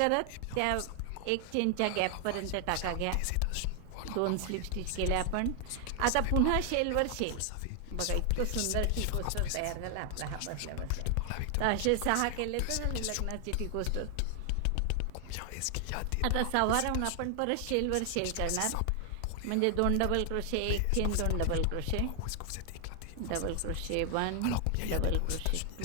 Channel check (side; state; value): both; different; correlation 0.00